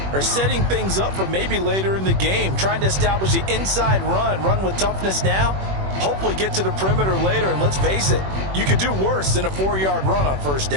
are setting things up for maybe later in the game, trying to establish the inside run with toughness now, hopefully get to the perimeter later. And let's face it, you could do worse than a 4-yard run on first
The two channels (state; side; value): late; left; 21 ms